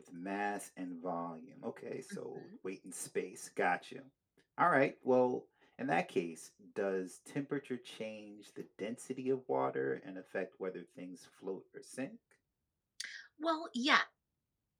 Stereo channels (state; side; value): identical; both; correlation 1.00